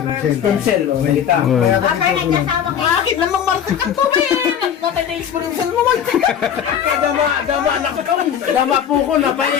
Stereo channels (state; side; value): quieter; right; 8.7 dB